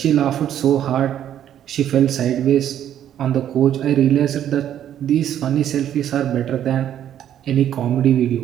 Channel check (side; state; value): left; quieter; 10.6 dB